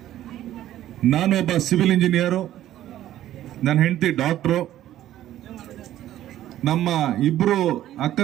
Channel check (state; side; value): quieter; left; 13.0 dB